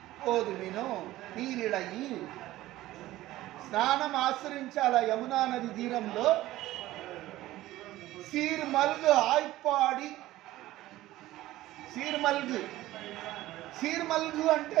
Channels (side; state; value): left; quieter; 16.0 dB